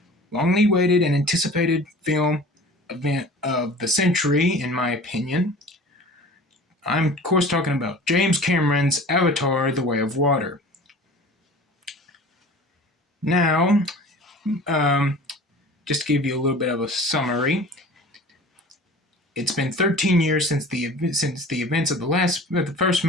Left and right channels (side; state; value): both; normal; correlation 0.42